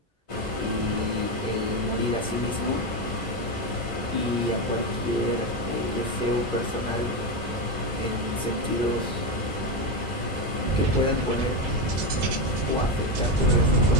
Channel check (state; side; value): normal; both; correlation 0.12